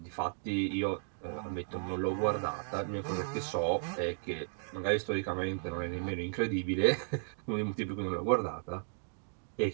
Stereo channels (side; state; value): left; silent; digital silence